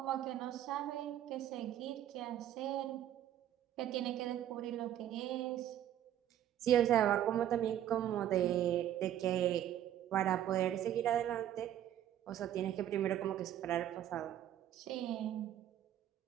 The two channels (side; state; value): left; quieter; 11.4 dB